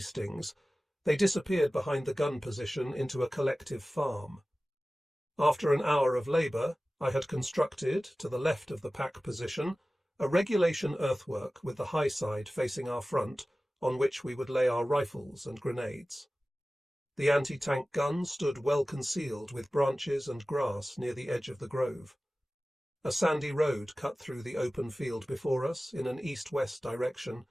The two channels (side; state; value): both; normal; correlation 0.97